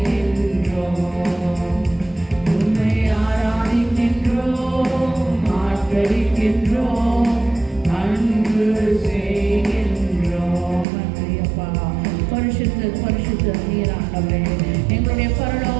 உம்மை ஆராதிக்கின்றோம், ஆர்ப்பரிக்கின்றோம், அன்பு செய்கின்றோம். நன்றி அப்பா. பரிசுத்த பரிசுத்த நீர் ஆண்டவரே, எங்களுடைய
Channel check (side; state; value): left; drops out; at 10.9 s